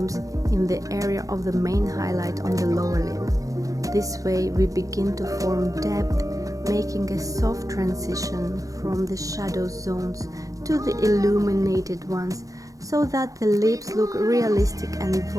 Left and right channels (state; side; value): late; left; 0.16 ms